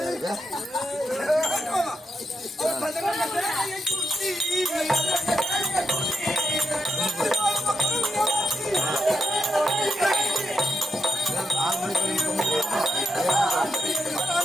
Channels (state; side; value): normal; both; correlation 0.83